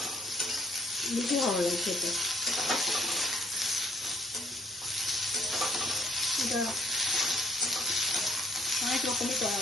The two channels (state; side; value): normal; both; correlation 0.63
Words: বেশি ভালো লাগে খেতে। এটা অনেক রকমই করা